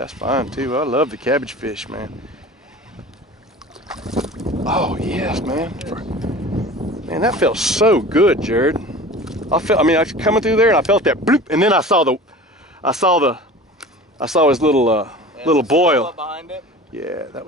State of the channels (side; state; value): both; normal; correlation 0.39